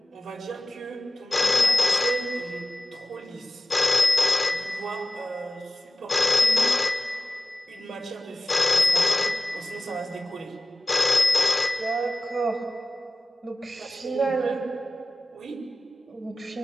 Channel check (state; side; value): normal; both; correlation 0.95